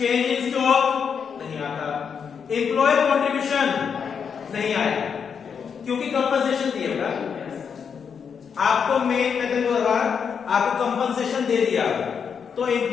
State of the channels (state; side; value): quieter; right; 6.7 dB